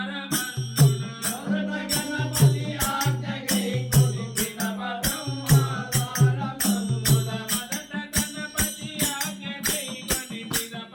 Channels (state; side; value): identical; both; correlation 1.00